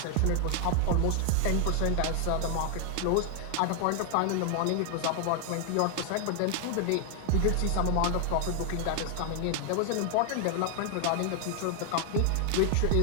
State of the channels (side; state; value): both; different; correlation 0.00